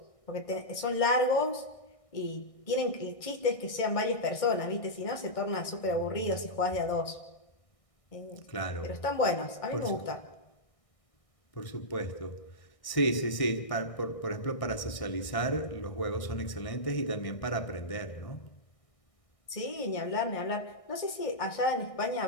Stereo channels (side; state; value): right; late; 1.6 ms